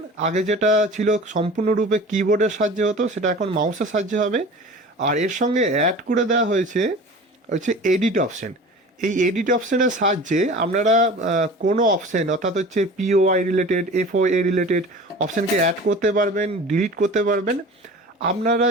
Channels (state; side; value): normal; both; correlation 0.39